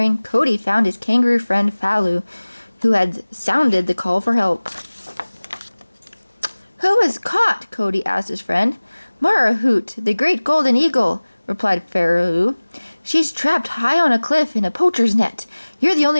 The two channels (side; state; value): both; inverted; correlation -1.00